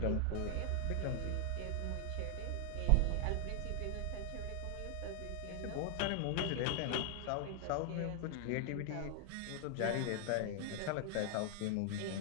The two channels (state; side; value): different; both; correlation 0.00